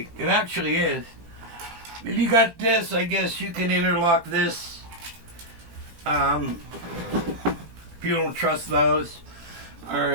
It actually is. If you got this, I guess you can interlock this. If you don't trust those.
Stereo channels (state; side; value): late; left; 18 ms